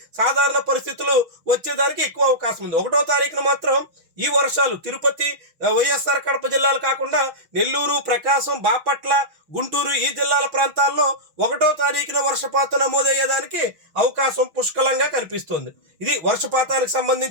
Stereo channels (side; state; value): left; late; 6.4 ms